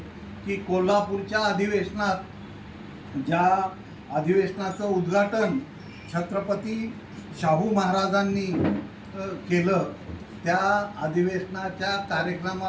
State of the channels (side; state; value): both; identical; correlation 1.00